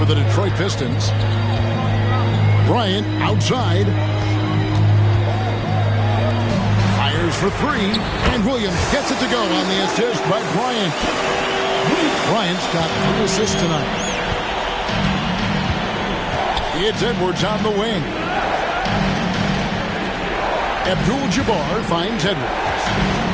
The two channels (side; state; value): both; identical; correlation 1.00